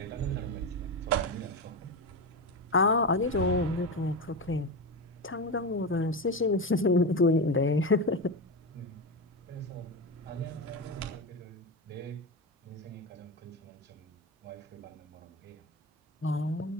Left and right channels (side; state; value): both; normal; correlation 0.17